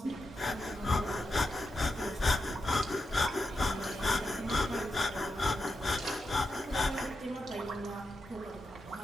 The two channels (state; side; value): normal; both; correlation 0.87